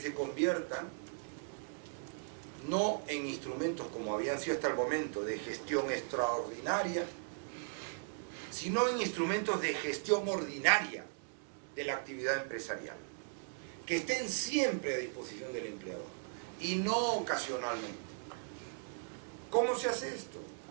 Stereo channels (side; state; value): left; silent; digital silence